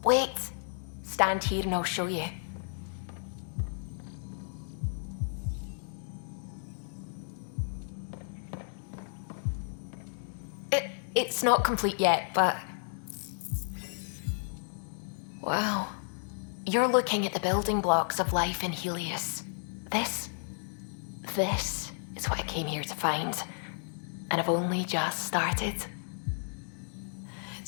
Wait. Stand here and I'll show you. It's not complete yet, but... Wow. You're looking at the building blocks of life in Helios. This is what I came here to find. And I've only just started.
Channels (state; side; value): silent; right; digital silence